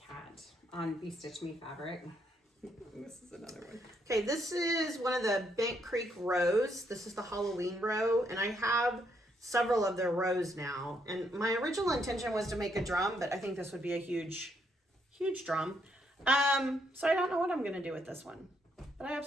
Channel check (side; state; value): both; normal; correlation 0.74